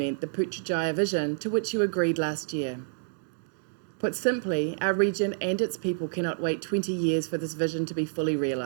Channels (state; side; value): silent; left; digital silence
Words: the Putrajaya vision to which you agreed last year. Put simply, our region and its people cannot wait 20 years for this vision to be fully